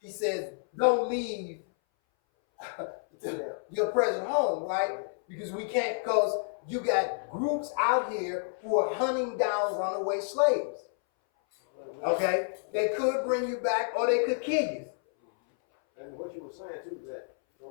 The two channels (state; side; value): silent; right; 58 dB below the other